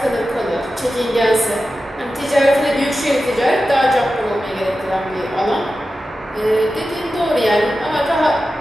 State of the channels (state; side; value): normal; both; correlation 0.93